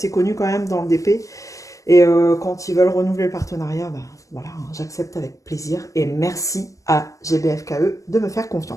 connue quand même dans le DP. Et quand ils veulent renouveler le partenariat, ben, voilà, hein, j'accepte avec plaisir. Et merci à GBFKE de me faire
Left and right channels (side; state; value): right; late; 0.16 ms